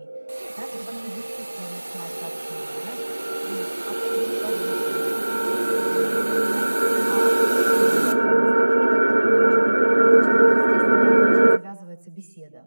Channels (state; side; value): inverted; both; correlation -1.00